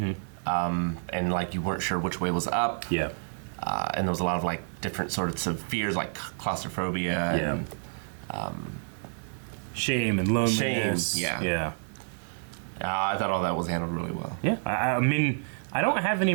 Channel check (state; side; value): silent; left; 59 dB below the other